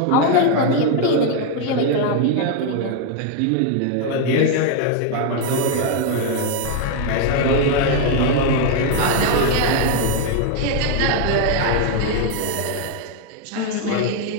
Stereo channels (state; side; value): different; both; correlation 0.01